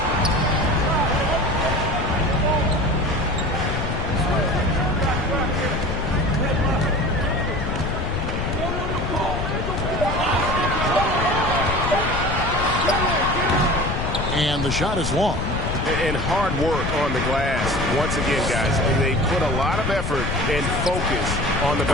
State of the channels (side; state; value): left; noise; rumble, 2 dB below the sound